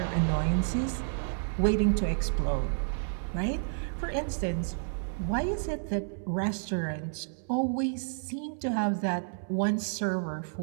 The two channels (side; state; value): left; silent; 57 dB below the other